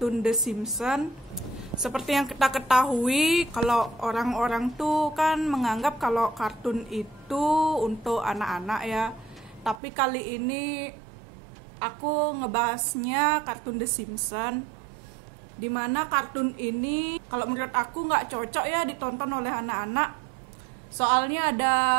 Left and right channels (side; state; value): left; drops out; at 9.8 s